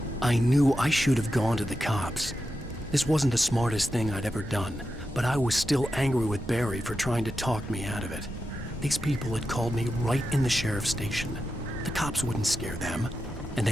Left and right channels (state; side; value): normal; both; correlation 0.89